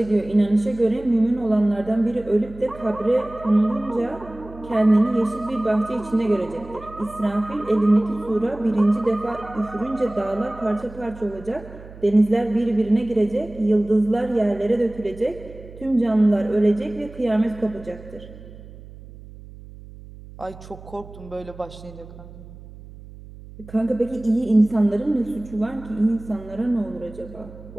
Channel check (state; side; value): noise; right; hum, 17 dB below the sound